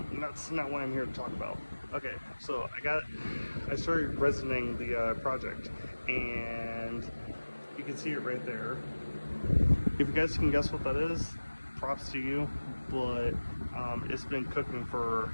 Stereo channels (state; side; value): inverted; both; correlation -1.00